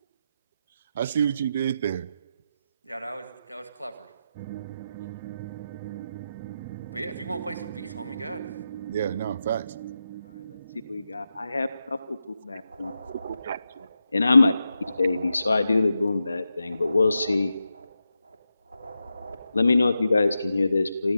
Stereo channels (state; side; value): inverted; both; correlation -0.88